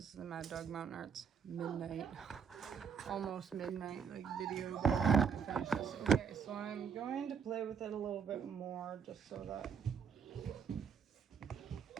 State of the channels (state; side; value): quieter; left; 6.8 dB